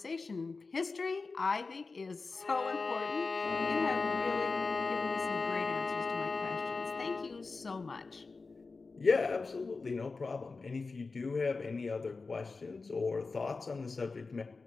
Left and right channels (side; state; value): right; quieter; 4.1 dB